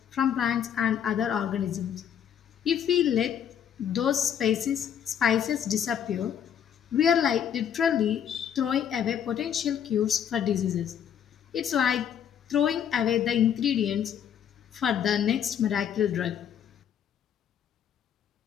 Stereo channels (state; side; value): quieter; right; 8.9 dB